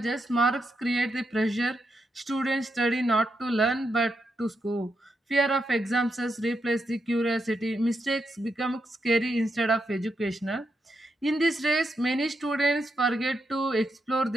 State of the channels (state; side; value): normal; both; correlation 0.83